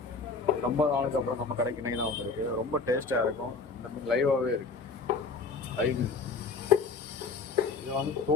ரொம்ப நாளுக்கு அப்புறம் நம்ம கடைக்கு இன்னைக்கு தான் வந்திருக்கு. ரொம்ப டேஸ்ட்டாக இருக்கும். இந்த மீன் லைவாகவே இருக்கு, லைவ் மீன். இதை வந்து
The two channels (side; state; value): right; quieter; 4.5 dB